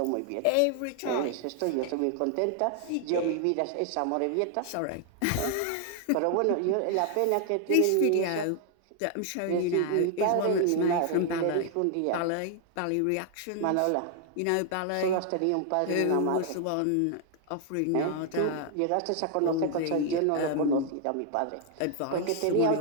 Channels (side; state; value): both; different; correlation 0.00